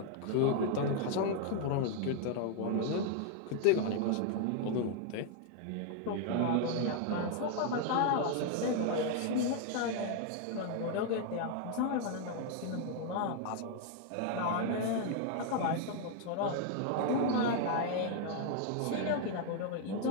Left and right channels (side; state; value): both; different; correlation 0.00